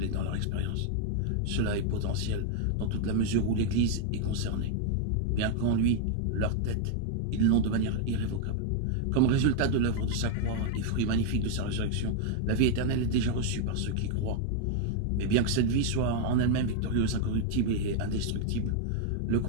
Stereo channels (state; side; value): different; both; correlation 0.00